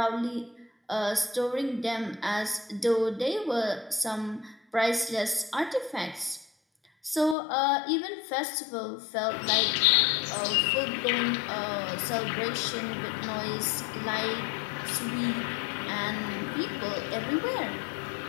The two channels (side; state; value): right; drops out; at 7.4 s